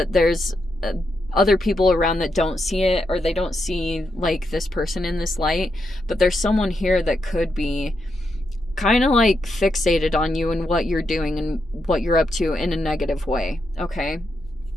there's other people around that don't see it, or they don't see like this person in this light. But there's someone here that could be kind of like fixated on you and what you're doing and what you're up to in a negative way. Okay,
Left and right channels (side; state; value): both; normal; correlation 0.83